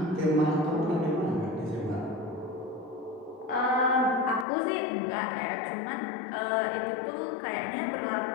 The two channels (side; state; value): right; drops out; at 4.5 s